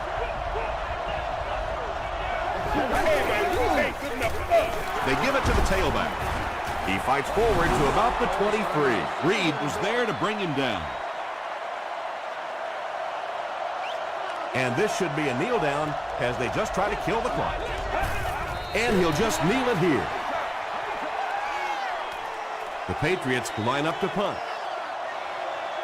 They give it to the tailback. He fights forward to about the 23. Reed was there to bring him down. And this should be a kneel down as they just try to kill the clock. And he'll just kneel it here. The Patriots line up to punt.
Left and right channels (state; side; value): identical; both; correlation 1.00